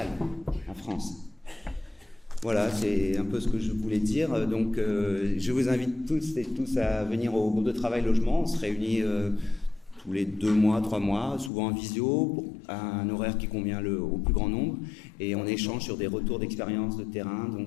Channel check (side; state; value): right; drops out; at 11.5 s